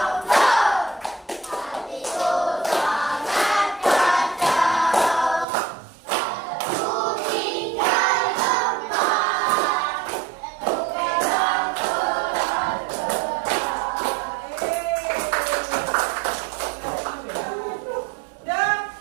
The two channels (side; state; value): left; drops out; at 5.5 s